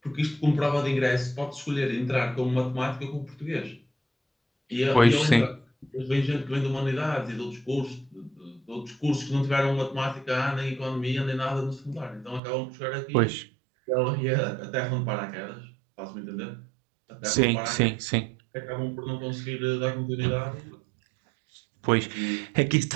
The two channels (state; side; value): drops out; left; at 12.4 s